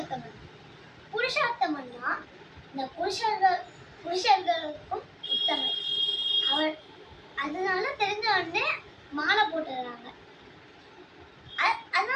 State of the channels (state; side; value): identical; both; correlation 1.00